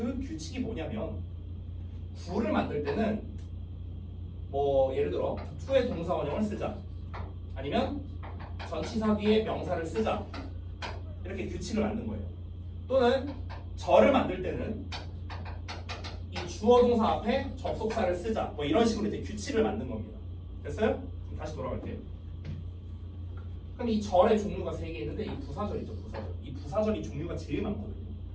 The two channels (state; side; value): identical; both; correlation 1.00